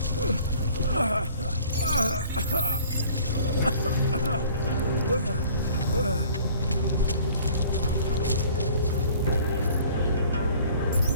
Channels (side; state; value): both; inverted; correlation -0.52